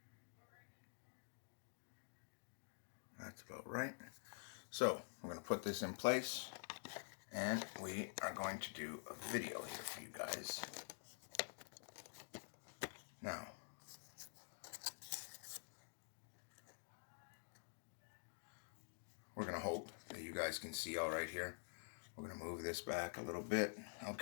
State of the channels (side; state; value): right; silent; digital silence